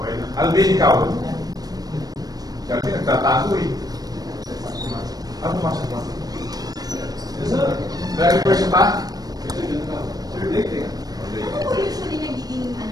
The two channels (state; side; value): late; left; 0.19 ms